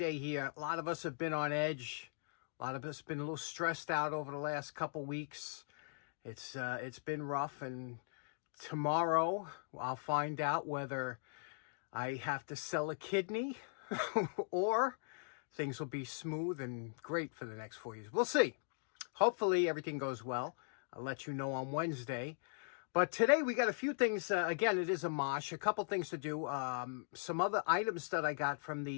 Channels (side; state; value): right; silent; digital silence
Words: here. A lot of us have been on edge. A lot of us have been a little stressed out over the last couple weeks. It's been rough, and tomorrow I'll find out whether I have to sell a kidney or things will be smooth and great for the next 4 years. We'll see. Hopefully everything goes well. I'll let you know on Wednesday. But today we got a few things. Again, it is a mosh. A couple things to do. Some other items that I got from